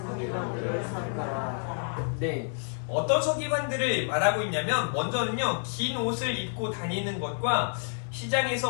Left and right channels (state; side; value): silent; right; digital silence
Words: 삼가라. 네, 어떤 서기관들을 말하고 있냐면 먼저는요, 긴 옷을 입고 다니는 것과